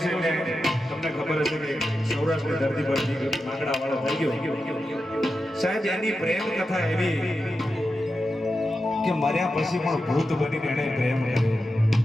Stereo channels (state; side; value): normal; both; correlation 0.90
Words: છે એટલે તમને ખબર હશે કે સૌરાષ્ટ્રની ધરતી પર વાગડા વાળો થઈ ગયો. સાહેબ એની પ્રેમ કથા એવી કે મર્યા પછી પણ ભૂત બનીને એને પ્રેમ કર્યો.